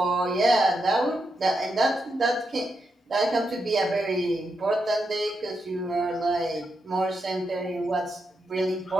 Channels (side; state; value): both; normal; correlation 0.84